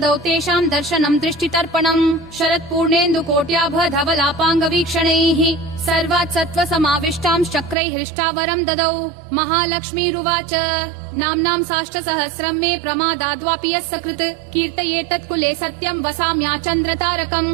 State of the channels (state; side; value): drops out; left; at 7.8 s